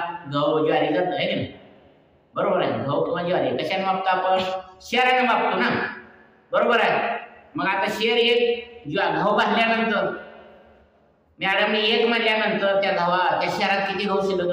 गहू ज्वारी जात आहे की नाही, बरोबर आहे. गहू किंवा ज्वारी कशाने मापतो आपण? शेराने मापतो ना, बरोबर आहे. मग आता शेर एक गहू भाजल्यानंतर मॅडमने एक म्हणल्यानंतर त्या शेरात किती गहू शिल्लक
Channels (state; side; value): identical; both; correlation 1.00